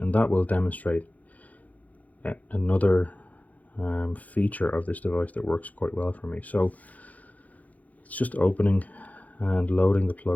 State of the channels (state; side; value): late; right; 0.075 ms